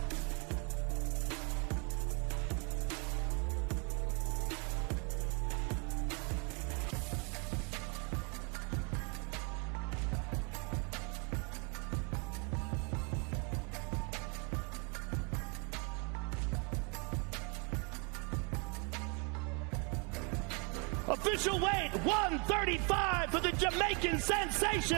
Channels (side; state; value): left; quieter; 33.7 dB